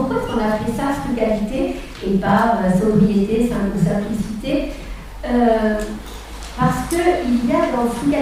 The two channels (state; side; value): identical; both; correlation 1.00